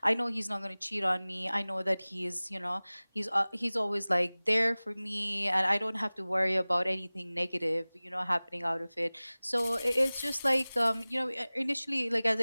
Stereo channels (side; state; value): both; inverted; correlation -0.99